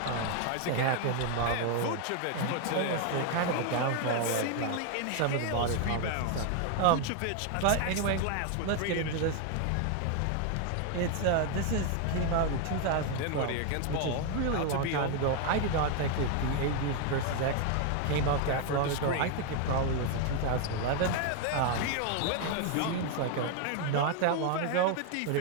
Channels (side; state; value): both; different; correlation 0.01